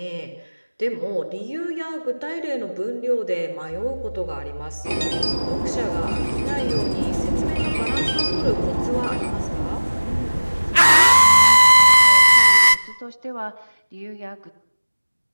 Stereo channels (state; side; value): inverted; both; correlation -1.00